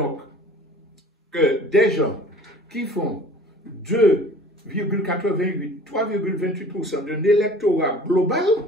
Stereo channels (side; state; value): both; normal; correlation 0.47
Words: que des gens qui font 2,88, 3,28% de l'électorat global